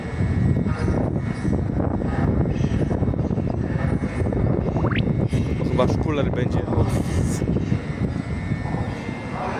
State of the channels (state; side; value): identical; both; correlation 1.00